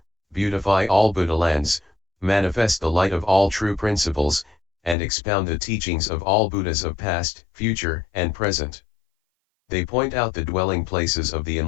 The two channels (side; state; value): right; drops out; at 5.0 s